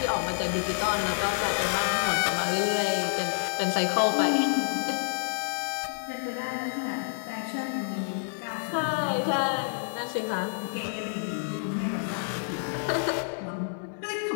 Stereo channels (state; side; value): silent; right; digital silence